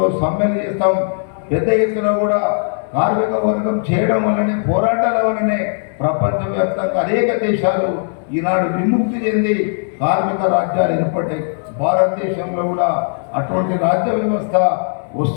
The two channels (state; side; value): silent; right; digital silence